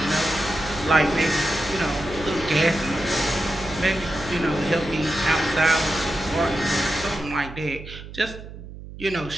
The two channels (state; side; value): noise; right; hum, 13 dB below the sound